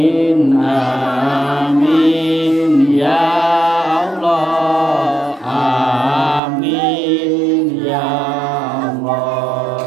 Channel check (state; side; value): drops out; left; at 6.4 s